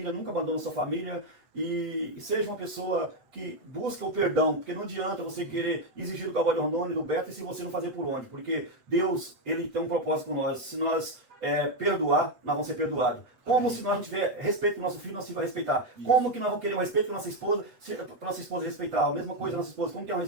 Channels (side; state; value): left; late; 8.1 ms